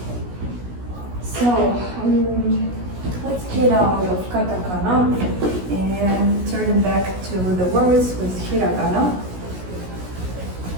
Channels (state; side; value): late; left; 16 ms